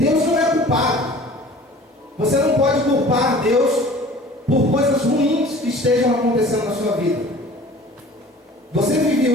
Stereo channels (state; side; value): normal; both; correlation 0.45